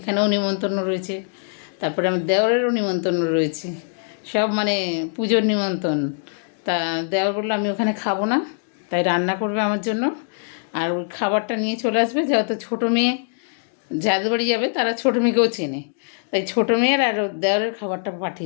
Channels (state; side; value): silent; right; digital silence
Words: নিমন্ত্রণ রয়েছে। তারপরে আমার দেওরেরও নিমন্ত্রণ রয়েছে। সব মানে পুজোর নিমন্ত্রণ। তা দেওর বললো আমি ওখানে খাবো না, তাই রান্না করবে আমার জন্য। আর ওই খাবারটা নিয়ে চলে আসবে, যেহেতু ছোটো মেয়ে যাদের বাড়ি যাবে তারা ছোটো মেয়েকেও চেনে, তাই ছোটো মেয়ের আর ওর দেওরের খাবারটা